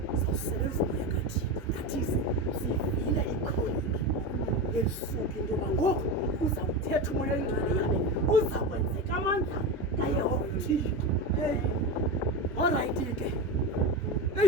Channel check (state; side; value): normal; both; correlation 0.20